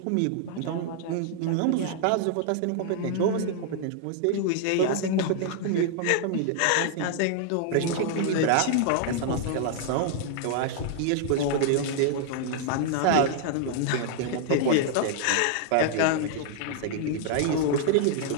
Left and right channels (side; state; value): both; different; correlation 0.00